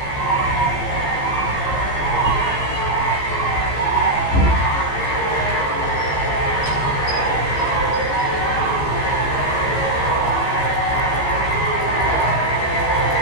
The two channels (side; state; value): right; late; 15 ms